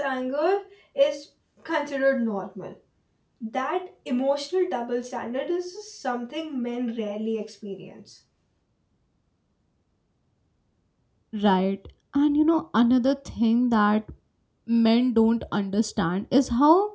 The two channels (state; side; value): identical; both; correlation 1.00